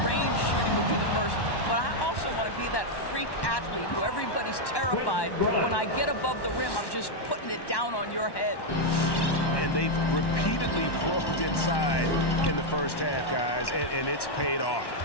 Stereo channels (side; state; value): right; late; 1.1 ms